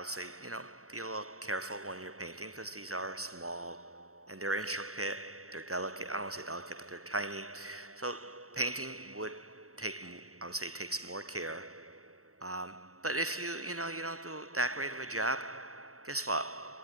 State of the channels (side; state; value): left; late; 0.64 ms